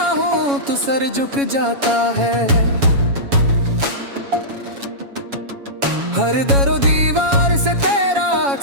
हूँ तो सर झुक जाता है, हर दरो दीवार से तेरा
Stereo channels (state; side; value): late; left; 7.2 ms